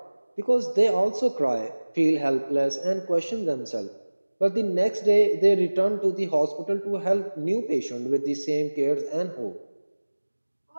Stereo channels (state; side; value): inverted; both; correlation -1.00